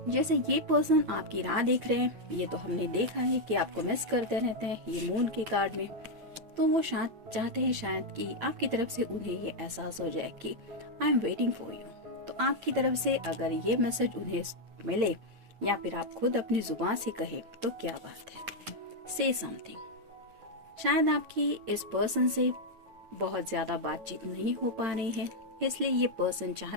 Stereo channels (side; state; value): left; late; 9.0 ms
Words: जैसे ये पर्सन आपकी राह देख रहे हैं, ये तो हमने देखा है कि आपको मिस करते रहते हैं ये मून के कार्ड में। तो वो शायद चाहते हैं शायद कि आपकी तरफ से उन्हें ये एहसास हो जाए कि I am waiting for you. तो आपकी तरफ से अगर ये मैसेज उन्हें मिले या फिर आप खुद अपनी जुबान से कहे तो क्या बात है। से समथिंग, शायद आपकी इस पर्सन से बहुत ज्यादा बातचीत नहीं हो पा रही है, इसलिए ये पर्सन